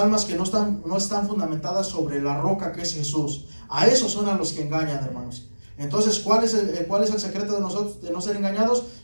que no están fundamentadas sobre la roca que es Jesús. A esos son a los que engañan, hermanos. Entonces, ¿cuál es el secreto de nosotros de no ser engañados?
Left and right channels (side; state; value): both; inverted; correlation -1.00